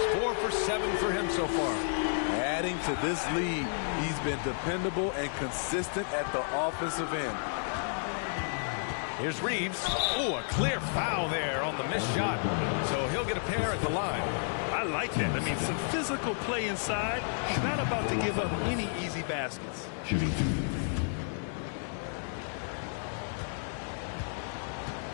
4 for 7 for him so far. Adding to this lead, he's been dependable and consistent at the offensive end. Here's Reeves. Oh, a clear foul there on the missed shot. So he'll get a pair at the line. I like that. I mean, some physical play inside. He's not about to give up any easy baskets. Shooting 2.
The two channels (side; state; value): right; silent; digital silence